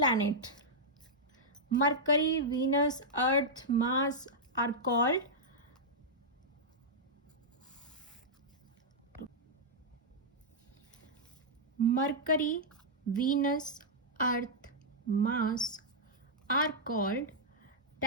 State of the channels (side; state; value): both; normal; correlation -0.08